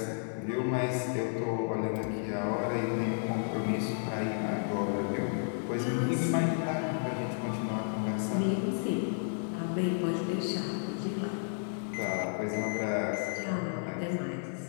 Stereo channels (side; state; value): right; silent; digital silence